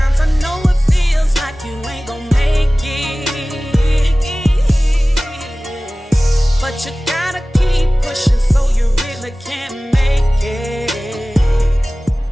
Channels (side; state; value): both; normal; correlation 0.97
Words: I know it feels like you ain't gonna make it, but you gotta keep pushing so you really can make it.